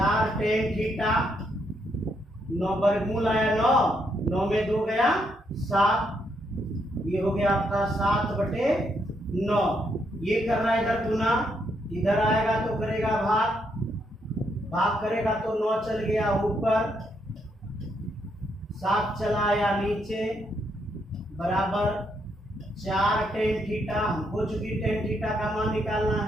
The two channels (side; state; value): both; normal; correlation 0.76